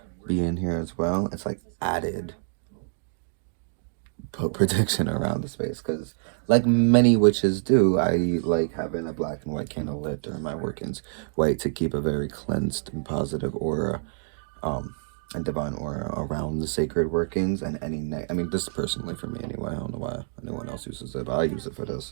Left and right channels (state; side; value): silent; left; digital silence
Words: being here as well, it's like added protection around the space, because like many witches do, I like having a black and white candle lit during my workings, white to keep a very cleansed and positive aura, and divine aura around the sacred workings, and any I mean, this is personally for me anyway. I don't know why anyone else uses it, but I use it for